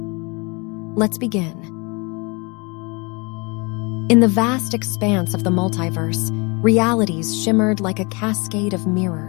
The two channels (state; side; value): quieter; right; 29.3 dB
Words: Let's begin. In the vast expanse of the multiverse, realities shimmered like a cascade of